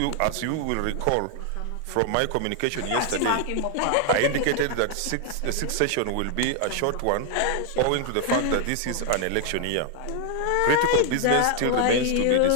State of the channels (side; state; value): both; different; correlation 0.00